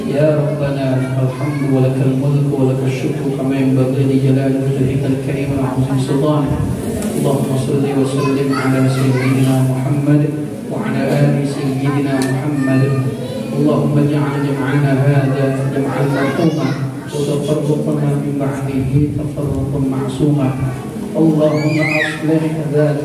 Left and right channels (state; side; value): identical; both; correlation 1.00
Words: Ya Rabbana alhamdu wa lakal mulku wa lakal syukru kama yanbaghi li jalali wajhikal karim wa 'azimi sultanik. Allahumma shalli wa sallim ala sayyidina Muhammad wa ala ali sayyidina Muhammad. Allahumma ij'al jam'ana hadha jam'an marhuma wa tafarruqana min ba'dihi tafarruqan ma'suma. Allahumma aslih